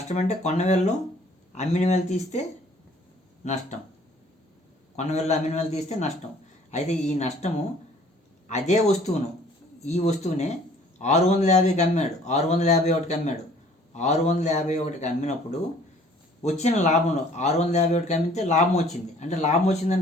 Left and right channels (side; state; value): both; normal; correlation 0.55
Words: అంటే కొన్న వేలలో అమ్మిన వేలు తీస్తే నష్టం, కొన్న వేలలో అమ్మిన వేలు తీస్తే నష్టం. అయితే ఈ నష్టము అదే వస్తువును, ఈ వస్తువునే 650కి అమ్మాడు, 651కి అమ్మాడు. 651కి అమ్మినప్పుడు వచ్చిన లాభంలో 651కి అమ్మితే లాభం వచ్చింది. అంటే లాభం